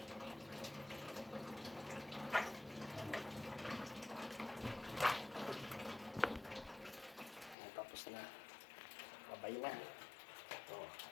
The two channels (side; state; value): right; drops out; at 7.6 s